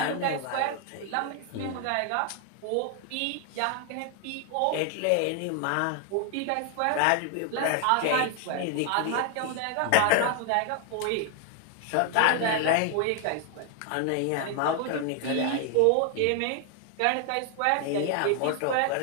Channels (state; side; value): different; both; correlation 0.00